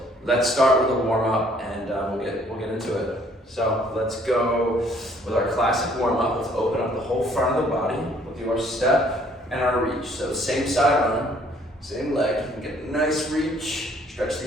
let's start with a warm up, and we'll get into it. So let's go with our classic warm up. Let's open up the whole front of the body. We'll do our step and our reach. So same side arm, same leg. You can get a nice reach, stretch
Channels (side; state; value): both; normal; correlation 0.61